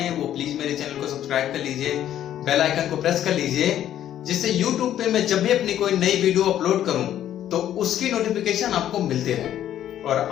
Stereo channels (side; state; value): right; quieter; 11.3 dB